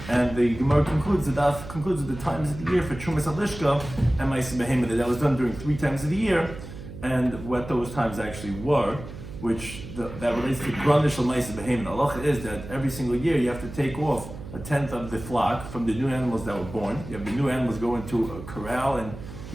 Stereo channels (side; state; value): right; noise; hum, 12 dB below the sound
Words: And the Gemara concludes with the times of the year for Trumas Alishka and Ma'aseh Behemah, that was done during 3 times of the year, and what those times actually were, which that relates to Granish al Ma'aseh Behemah. The halacha is that every single year you have to take off 1/10 of the flock from the new animals that were born. You have the new animals go into a corral and